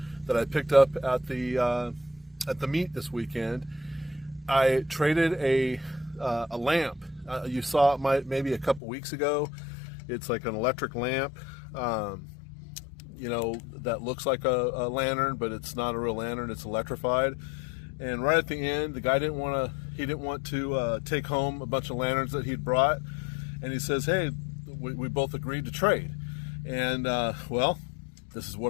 that I picked up at the meet this weekend. I traded a lamp. You saw it maybe a couple weeks ago. It's like an electric lamp, you know, that looks like a lantern, but it's not a real lantern. It's electrified. And right at the end, the guy didn't want to take home a bunch of lanterns that he'd brought, and he says, "Hey, we both agreed to trade." And well, this is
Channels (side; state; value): right; drops out; at 8.8 s